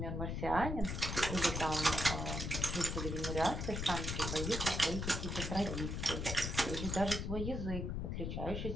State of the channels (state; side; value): noise; left; rumble, 2 dB below the sound